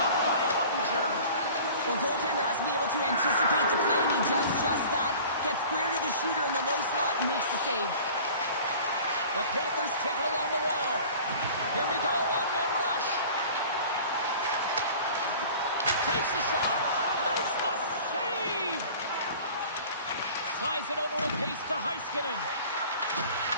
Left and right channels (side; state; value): both; inverted; correlation -0.43